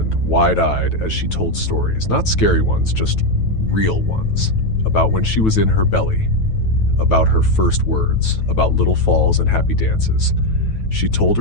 wide-eyed, as she told stories, not scary ones, just real ones, about when she was in her belly, about her first words, about little falls and happy dances. She told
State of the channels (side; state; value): right; late; 9.2 ms